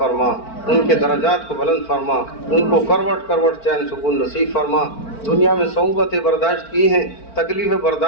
ان کے درجات کو بلند فرما، ان کو کروٹ کروٹ چین سکون نصیب فرما. دنیا میں صعوبتیں برداشت کی ہیں، تکلیفیں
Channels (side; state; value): right; late; 4.5 ms